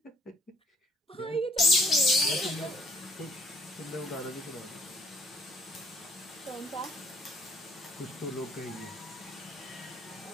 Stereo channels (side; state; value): both; normal; correlation 0.62